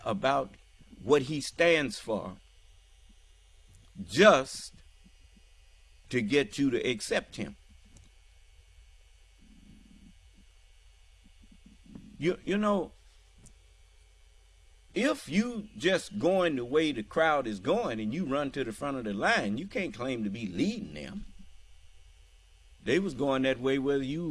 about what he stands for just to get you to accept him. You know, if you just going the way the crowd is going and you run to the front of the line, you can't claim to be leading them. They was going that way whether you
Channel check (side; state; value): both; identical; correlation 1.00